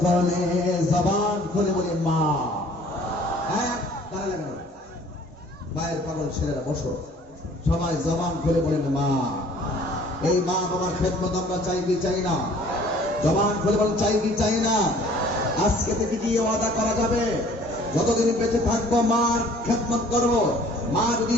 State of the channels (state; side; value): normal; both; correlation 0.53